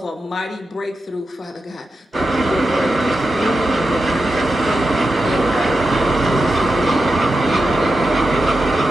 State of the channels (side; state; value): both; normal; correlation 0.89